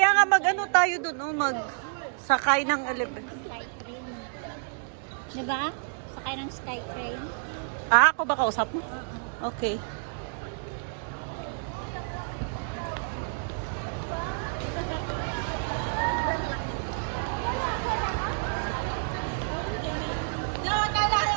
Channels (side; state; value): left; silent; digital silence